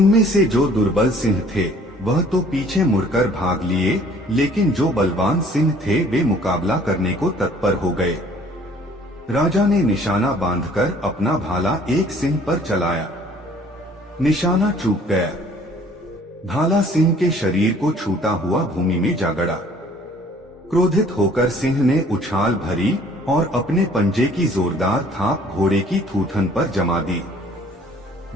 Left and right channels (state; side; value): normal; both; correlation 0.55